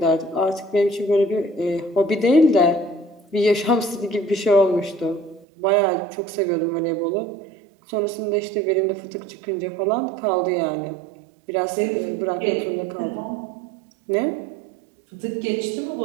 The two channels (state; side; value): drops out; left; at 5.5 s